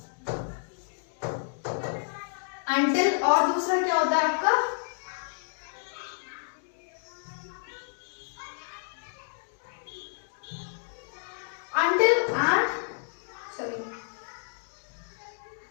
Until और दूसरा क्या होता है आपका, अंटिल एंड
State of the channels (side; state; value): right; silent; digital silence